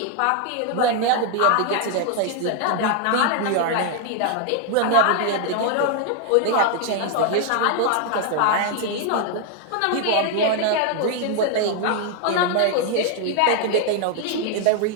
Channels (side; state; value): both; different; correlation 0.00